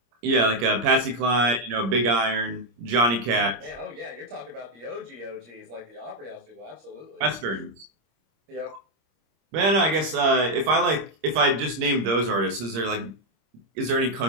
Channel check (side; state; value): left; late; 26 ms